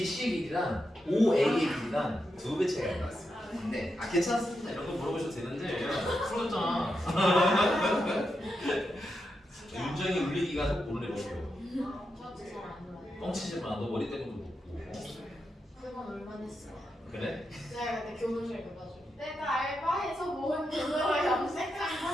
길이랑 OA의 길이랑 2배 차이가 나왔어요. 근데 괜찮습니다. 이런 거 물어보셔도 되는데 풀었잖아. 윤정이 울리기가 속 모르네 먹고요. 저도 잘안 놀아요. 뻥치지 마. 너 머리 때문에 먹고. 그건 얼마 됐어요? 그래? 제가 그때 교무실 가가지고 내가 알바해서 모은 돈으로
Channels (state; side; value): normal; both; correlation 0.86